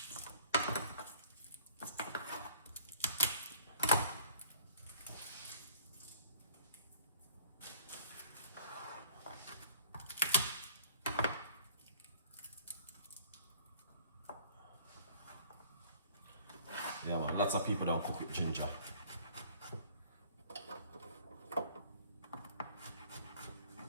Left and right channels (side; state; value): both; inverted; correlation -0.54